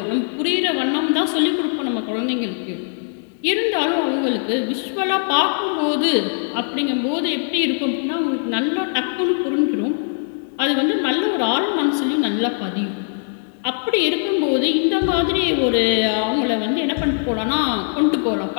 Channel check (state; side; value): silent; right; digital silence